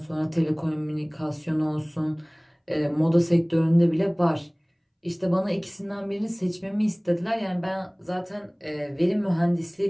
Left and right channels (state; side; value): identical; both; correlation 1.00